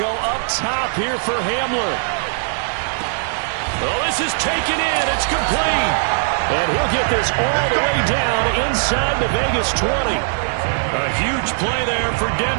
up top here for Hamler. Oh, this is taken in. It's complete. And he'll get this all the way down inside the Vegas 20. A huge play there for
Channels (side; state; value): left; silent; digital silence